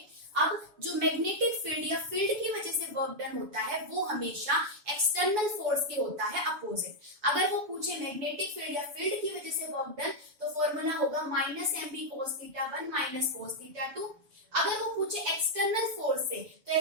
अब जो मैग्नेटिक फील्ड या फील्ड की वजह से वर्क डन होता है वो हमेशा एक्सटर्नल फोर्स के होता है अपोजिट। अगर वो पूछे मैग्नेटिक फील्ड या फील्ड की वजह से वर्क डन, तो फॉर्मूला होगा -mb cos θ1 माइनस cos θ2। अगर वो पूछे एक्सटर्नल फोर्स से, तो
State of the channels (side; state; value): left; late; 7.0 ms